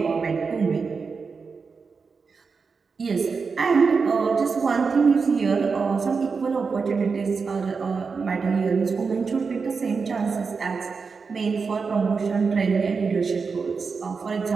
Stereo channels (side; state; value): left; quieter; 5.0 dB